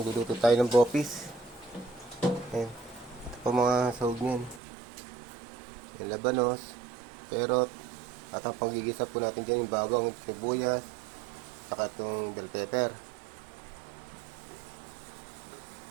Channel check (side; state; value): left; drops out; at 4.6 s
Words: tayo ng bopis. Ayan. Ito po mga sahog niyan. Yung labanos, perot, at ang panggigisa po natin dyan yung bawang, sibuyas, saka itong bell pepper.